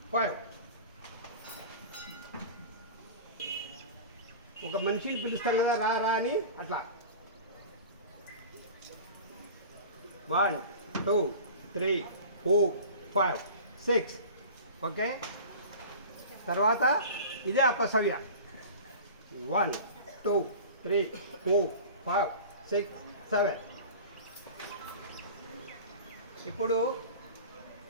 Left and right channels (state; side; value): inverted; both; correlation -0.37